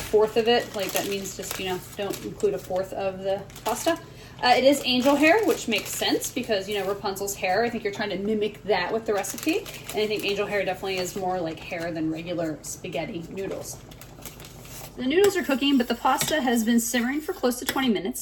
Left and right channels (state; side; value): identical; both; correlation 1.00